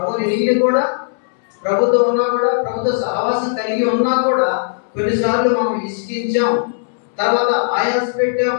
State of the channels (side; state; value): right; silent; 67 dB below the other